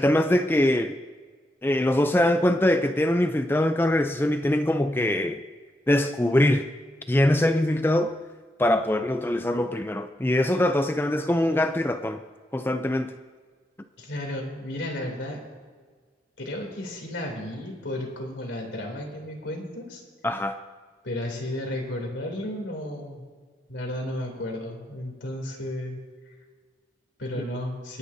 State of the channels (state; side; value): normal; both; correlation 0.81